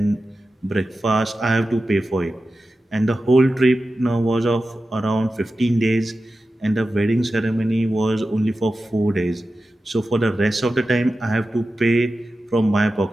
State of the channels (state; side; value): normal; both; correlation 0.93